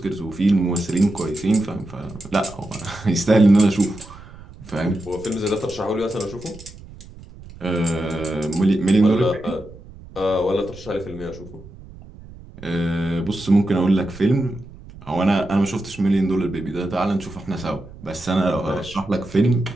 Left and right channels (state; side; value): noise; right; rumble, 18 dB below the sound